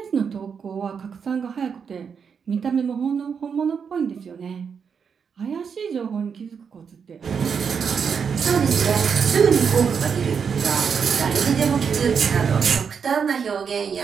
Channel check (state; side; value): quieter; left; 6.5 dB